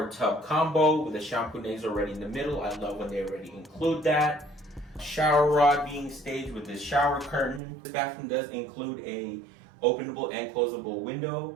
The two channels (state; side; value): drops out; left; at 7.6 s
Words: tub combo with the shampoo already in the middle. I love when they already include that. Shower rod being staged with this shower curtain. This bathroom does include a openable and closable